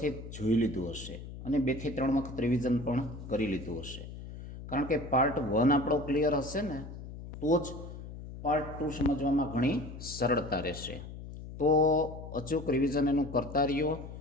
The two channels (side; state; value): left; noise; hum, 11 dB below the sound